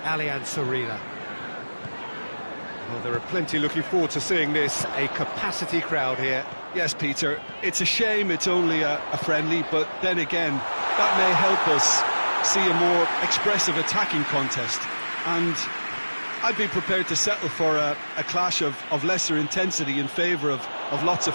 Arena. Well, there are plenty looking forward to seeing this, a capacity crowd here. Yes, Peter, it's a shame it's only a friendly, but then again, that may help us see a more expressive attacking contest. And I'd be prepared to settle for a clash of lesser intensity in favour of lots of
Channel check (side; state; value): both; inverted; correlation -1.00